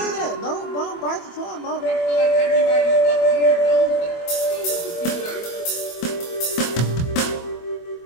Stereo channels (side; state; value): right; late; 24 ms